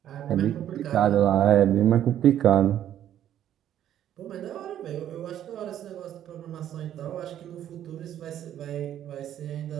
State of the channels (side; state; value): left; quieter; 11.0 dB